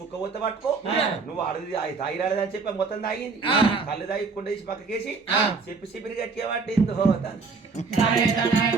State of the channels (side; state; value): left; quieter; 4.5 dB